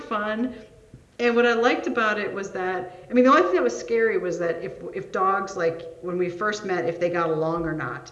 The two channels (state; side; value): identical; both; correlation 1.00